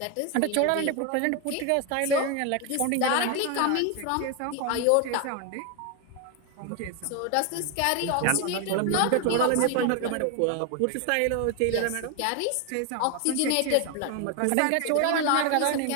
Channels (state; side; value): different; both; correlation 0.01